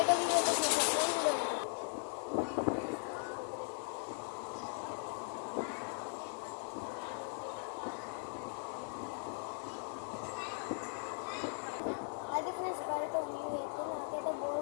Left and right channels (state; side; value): silent; right; 52 dB below the other